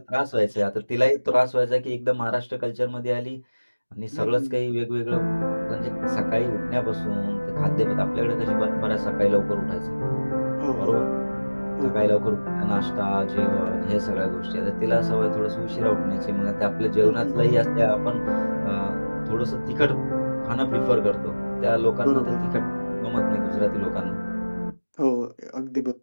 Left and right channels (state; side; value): inverted; both; correlation -1.00